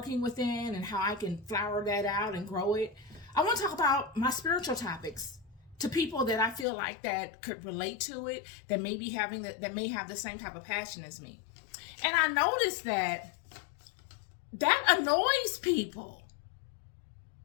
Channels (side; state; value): right; drops out; at 6.7 s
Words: within, and how I can flower that out and grow it. I want to talk about my spiritual topics to people that I feel like that could relate to it, that may be that may have the same type of passion as me. And I noticed that annoys people.